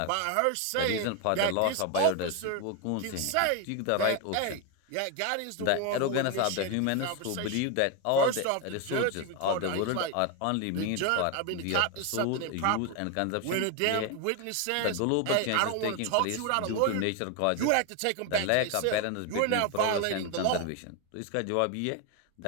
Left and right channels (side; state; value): both; different; correlation 0.01